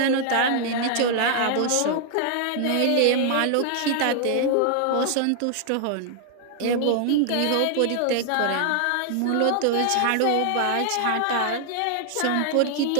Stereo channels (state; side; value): different; both; correlation 0.00